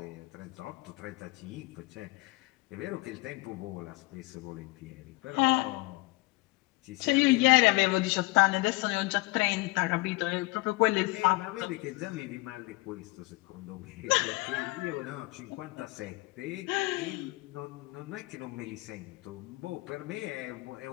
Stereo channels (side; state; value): right; quieter; 23.1 dB